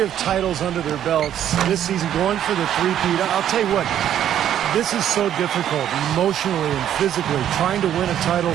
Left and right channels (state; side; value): quieter; left; 10.6 dB